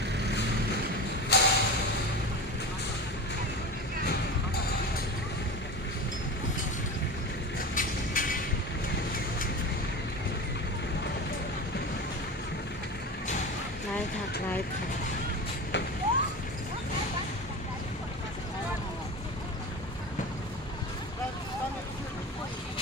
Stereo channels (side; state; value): both; normal; correlation 0.28